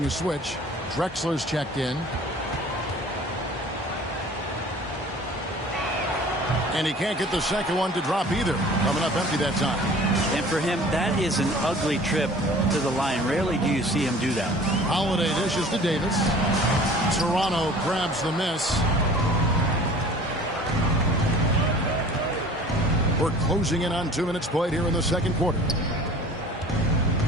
a switch. Drexler's checked in. And he can't get the second one to drop either. Coming up empty that time. And for him, that is an ugly trip to the line. Rarely do you see him do that. Holiday dishes to Davis. Toronto grabs the miss. We're closing in on 2 minutes played here in the second quarter.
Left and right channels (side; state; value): both; normal; correlation 0.46